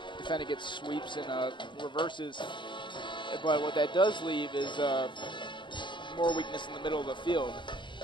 defend against sweeps and reverses. But what that does leave is more weakness in the middle of the field.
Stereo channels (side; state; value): right; late; 0.23 ms